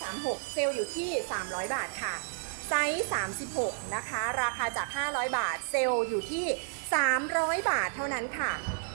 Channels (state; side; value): silent; left; 57 dB below the other